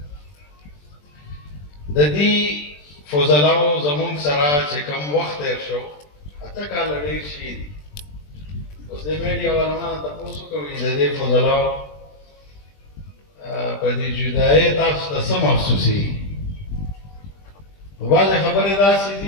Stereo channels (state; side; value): late; right; 20 ms